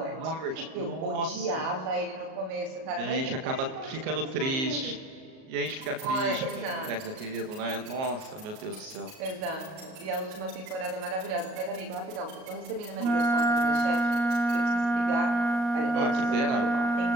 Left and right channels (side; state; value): left; late; 38 ms